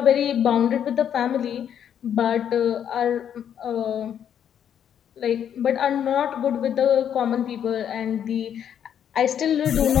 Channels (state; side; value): quieter; right; 9.1 dB